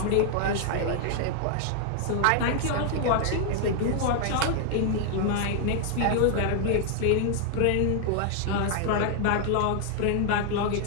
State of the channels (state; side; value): different; both; correlation 0.00